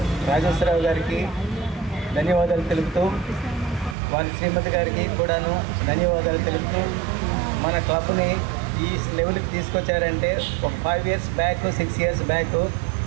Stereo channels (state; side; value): drops out; left; at 4.0 s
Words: రాజేశ్వరరావు గారికి ధన్యవాదాలు తెలుపుతూ, వారి శ్రీమతి గారికి కూడాను ధన్యవాదాలు తెలుపుతూ, మన క్లబ్ని ఈ లెవెల్కి తీసుకొచ్చారంటే ఒక 5 years బ్యాక్ 6 years బ్యాక్